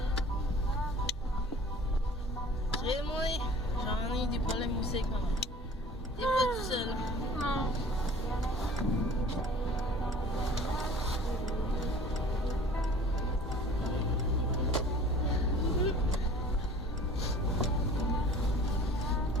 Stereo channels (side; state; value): both; normal; correlation 0.46